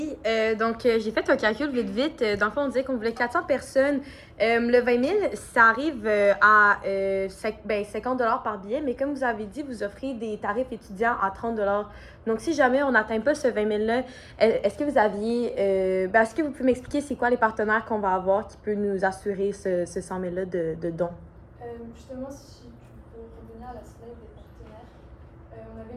donc j'ai fait un calcul vite. Dans le fond, on disait qu'on voulait 400 personnes. Le 20 000, ça arrive à 50 $ par billet, mais comme vous avez dit, vous offrez des tarifs étudiants à 30 $. Donc, si jamais on n'atteint pas ce 20 000-là, est-ce que vous pouvez m'expliquer c'est quoi les partenaires qu'on va avoir qui peut nous assurer ce 100 000-là de dons? Justement, si tu peux revenir à la slide des partenaires, on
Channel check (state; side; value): identical; both; correlation 1.00